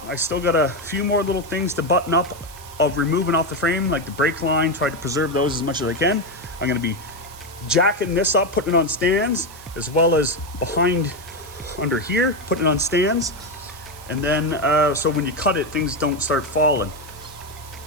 I still got a few more little things to button up of removing off the frame, like the brake line, try to preserve those as much as I can. I'm gonna be jacking this up, putting it on stands, as well as behind under here, putting it on stands. And then, so when you cut it, things don't start falling.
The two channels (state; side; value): noise; right; hiss, 19 dB below the sound